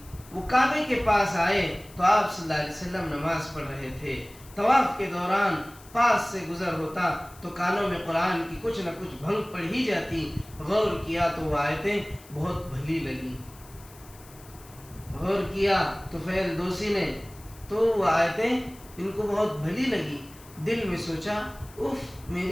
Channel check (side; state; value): left; noise; hiss, 22 dB below the sound